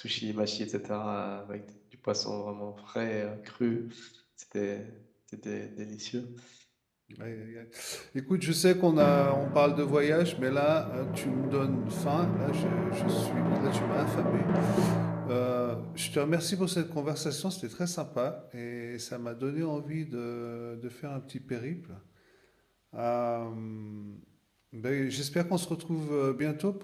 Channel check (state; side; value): identical; both; correlation 1.00